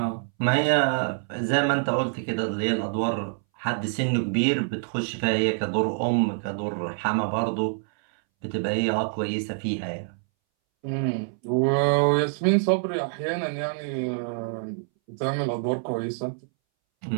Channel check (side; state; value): left; silent; 61 dB below the other